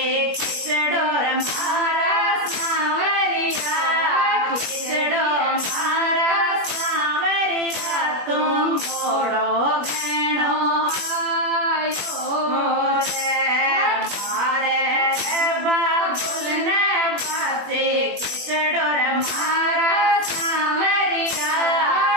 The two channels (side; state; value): left; late; 21 ms